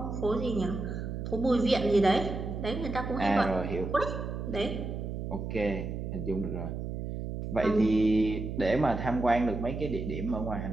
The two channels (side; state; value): right; noise; hum, 5 dB below the sound